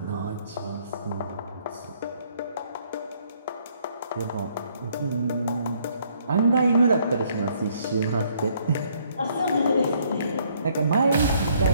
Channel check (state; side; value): inverted; both; correlation -0.67